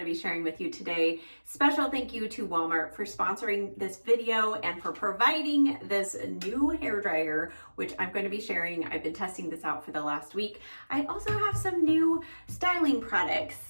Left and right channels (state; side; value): inverted; both; correlation -1.00